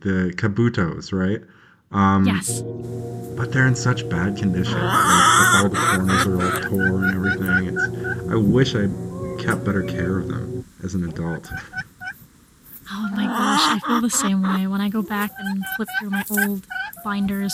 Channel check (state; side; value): identical; both; correlation 1.00